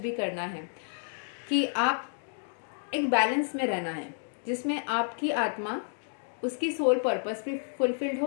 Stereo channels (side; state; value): right; silent; digital silence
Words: करना है। कि आप एक बैलेंस में रहना है जिसमें आपकी आत्मा, उसकी सोल पर्पस भी फुलफिल्ड